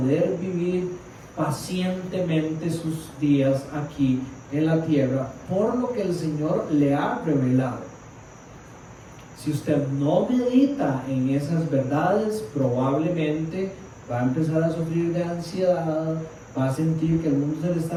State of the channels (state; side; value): identical; both; correlation 1.00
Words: vivir pacientemente sus días aquí en la tierra, por lo que el Señor le ha revelado. Si usted no medita en esas verdades, probablemente va a empezar a sufrir de ansiedad, va a sentir que el mundo se le